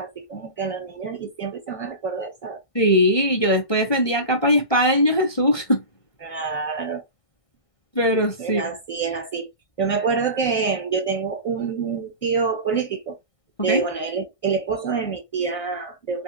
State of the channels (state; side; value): late; right; 1.6 ms